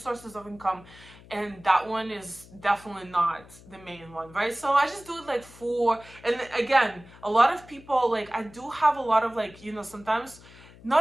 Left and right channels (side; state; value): left; noise; hum, 22 dB below the sound